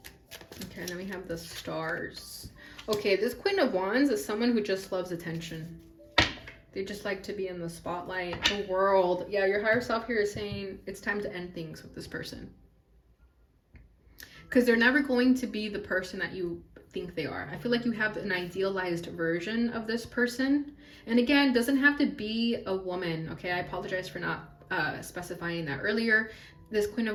and then we have the Stars. Okay, this Queen of Wands is someone who just loves attention. They just like to be in the spotlight, the world. Yeah, your higher self here is saying it's time to end things with this person. Because they're never going to be the person that you think they are. I feel like you have an idealized version of this person. And again, doesn't have to be a woman. Okay, I apologize for not specifying that earlier. This Queen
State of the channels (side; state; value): both; identical; correlation 1.00